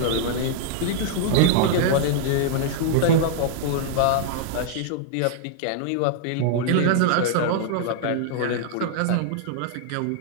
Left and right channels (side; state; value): both; different; correlation -0.01